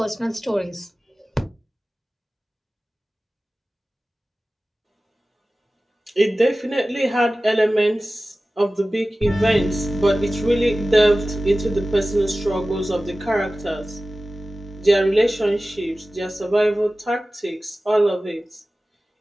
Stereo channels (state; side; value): normal; both; correlation 0.96